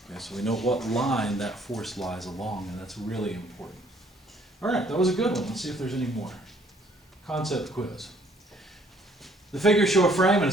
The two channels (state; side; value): normal; both; correlation 0.62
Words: Okay, so we know what line that force lies along, and that's really important. All right, that was a good one. Let's see if there's any more. Concept quiz. The figures show a frame and